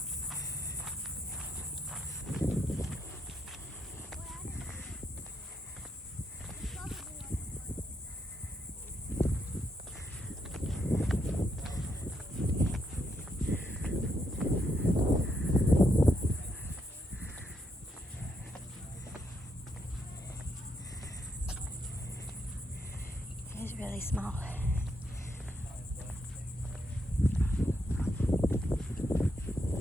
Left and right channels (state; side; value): normal; both; correlation 0.79